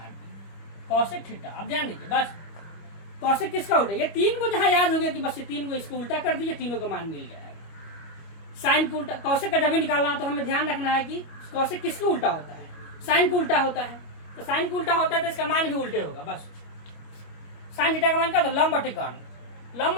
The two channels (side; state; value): right; late; 25 ms